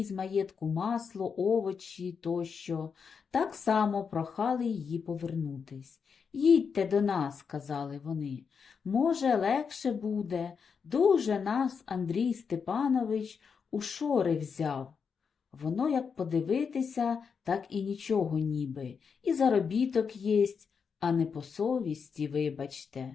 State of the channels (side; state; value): right; quieter; 6.1 dB